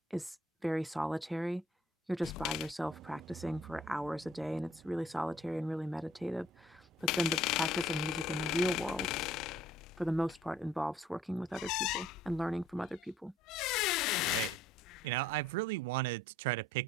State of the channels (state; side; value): normal; both; correlation 0.58